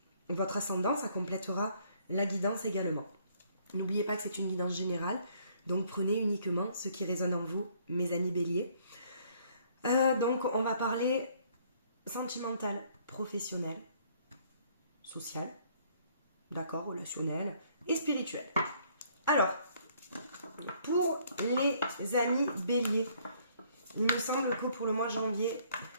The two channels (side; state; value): both; inverted; correlation -0.63